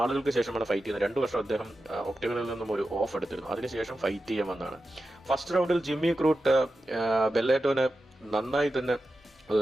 ശേഷമാണ് ഫൈറ്റ് ചെയ്യുന്നത്. 2 വർഷം അദ്ദേഹം ഒക്ടഗണിൽ നിന്നും ഒരു ഓഫ് എടുത്തിരുന്നു. അതിനുശേഷം ഫൈറ്റ് ചെയ്യാൻ വന്നതാണ്. ഫസ്റ്റ് റൗണ്ടിൽ ജിമ്മി ക്രൂട്ട് ബെല്ലാറ്റോനെ നന്നായി തന്നെ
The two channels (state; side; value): normal; both; correlation 0.91